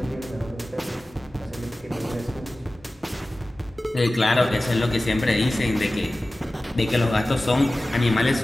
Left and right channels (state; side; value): normal; both; correlation 0.96